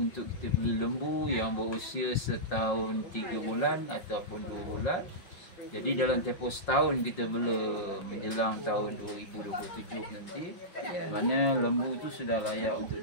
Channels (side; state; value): right; late; 5.6 ms